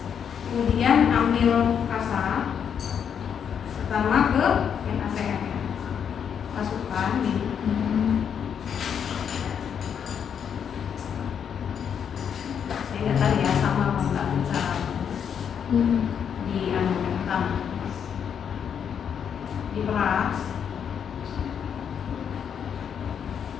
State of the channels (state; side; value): quieter; right; 7.9 dB